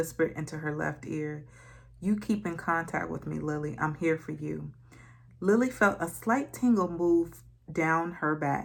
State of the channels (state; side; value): identical; both; correlation 1.00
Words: into her left ear. You keep in contact with me, Lily. I'm here for you. Lily felt a slight tingle move down her